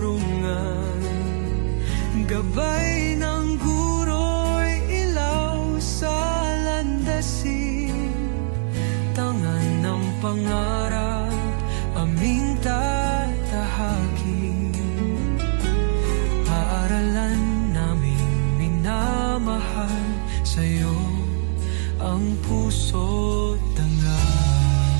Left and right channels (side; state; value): left; silent; digital silence